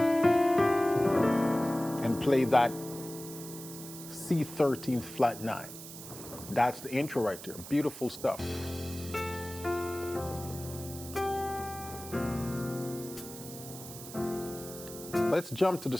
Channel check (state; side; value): noise; right; hiss, 13 dB below the sound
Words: and and play that C13 flat 9. That's the intro right there. Beautiful stuff. Let's jump to the